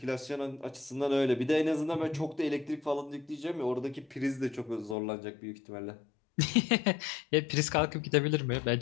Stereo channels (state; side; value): drops out; right; at 5.0 s